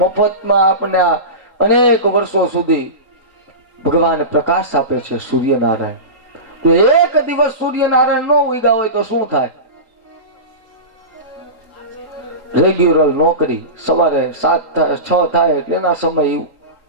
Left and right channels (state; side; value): late; left; 3.9 ms